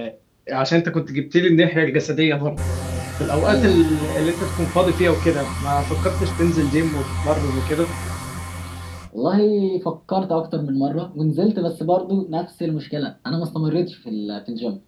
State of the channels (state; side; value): identical; both; correlation 1.00